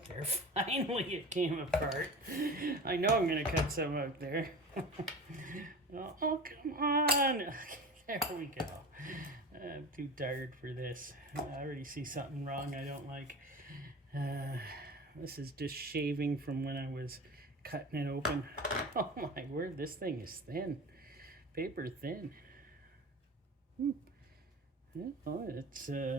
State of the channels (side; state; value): both; normal; correlation 0.32